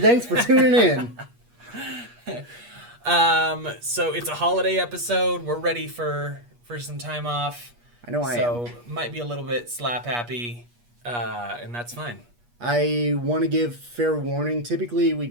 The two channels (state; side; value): late; left; 8.4 ms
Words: for tuning in. So it's a holiday episode. We're ready for some time off. I know I am. So might be a little bit slap happy, and that's fine. I want to give fair warning. Typically, we